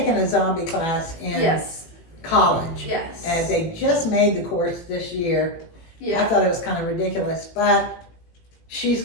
a zombie class in college. Yes. And they just made the course this year. Yeah. I thought it was kind of ridiculous, but she's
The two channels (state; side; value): late; right; 18 ms